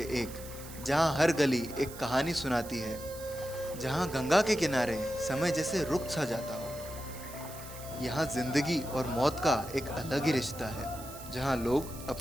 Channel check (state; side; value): noise; right; hiss, 15 dB below the sound